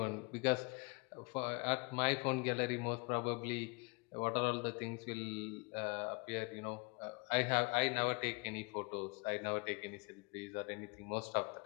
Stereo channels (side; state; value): right; quieter; 30.0 dB